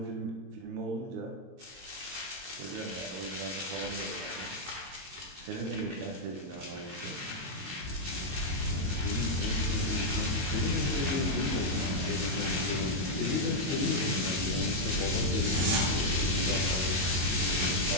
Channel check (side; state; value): left; late; 22 ms